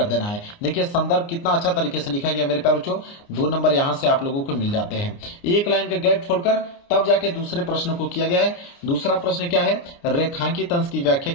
देना है। देखिए संदर्भ कितना अच्छा तरीके से लिखा गया मेरे प्यारे बच्चों, 2 नंबर यहाँ से आप लोगों को मिल जाते हैं। एक लाइन का गैप छोड़कर तब जाके दूसरे प्रश्न को किया गया है। दूसरा प्रश्न क्या है, रेखांकित अंश की व्याख्या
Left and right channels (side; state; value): right; late; 29 ms